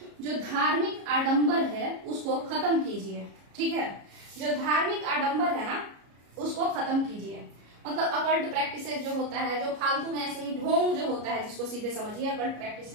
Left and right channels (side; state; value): left; late; 33 ms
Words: जो धार्मिक आडंबर है उसको खत्म कीजिए। ठीक है, जो धार्मिक आडंबर है ना उसको खत्म कीजिए। मतलब अकल्ट प्रैक्टिसेस जो होता है, जो फालतू में ऐसे ही ढोंग जो होता है, जिसको सीधे समझिए अकल्ट प्रैक्टिस